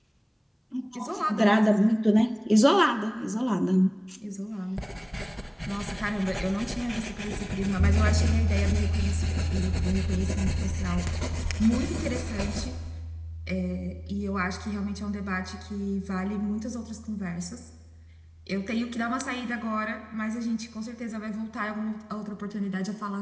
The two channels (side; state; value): both; identical; correlation 1.00